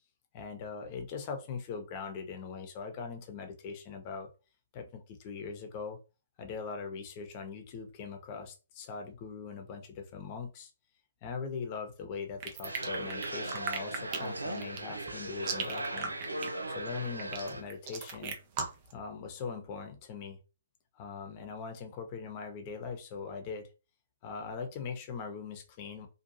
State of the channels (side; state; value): both; inverted; correlation -0.49